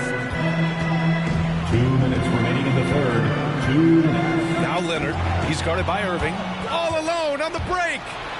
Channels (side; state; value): both; identical; correlation 1.00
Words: 2 minutes remaining in the third. 2 minutes. Now Leonard. He's guarded by Irving. All alone on the break.